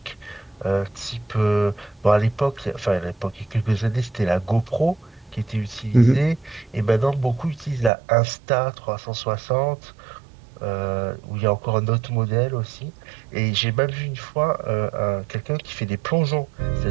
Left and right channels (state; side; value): drops out; left; at 7.9 s